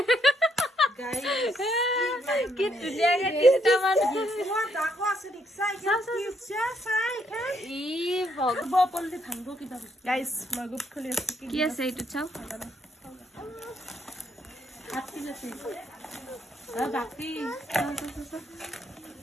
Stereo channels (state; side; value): normal; both; correlation 0.74